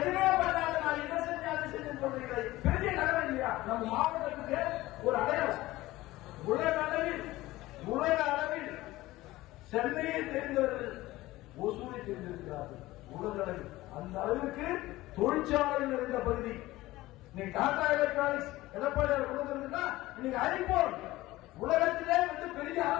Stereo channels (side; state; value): right; quieter; 17.9 dB